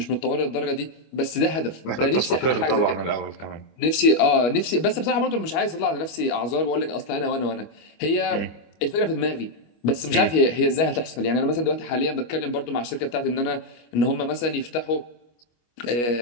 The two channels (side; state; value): right; late; 25 ms